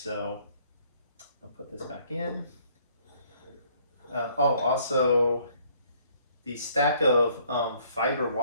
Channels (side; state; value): both; inverted; correlation -0.62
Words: I'll put this back in. Also the stack of fiber